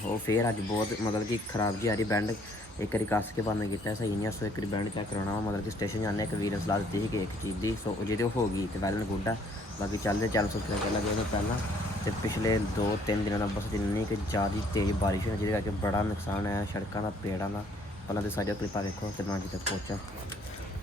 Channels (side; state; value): both; normal; correlation 0.63